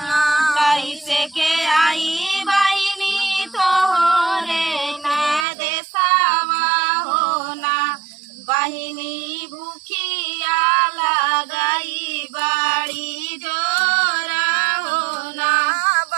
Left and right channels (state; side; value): drops out; left; at 5.5 s